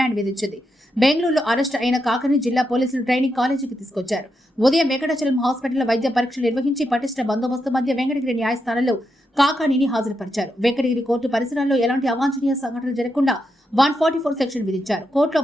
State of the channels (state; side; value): normal; both; correlation 0.84